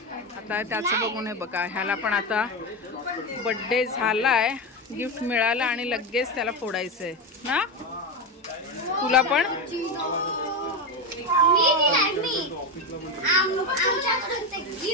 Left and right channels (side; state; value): both; normal; correlation 0.15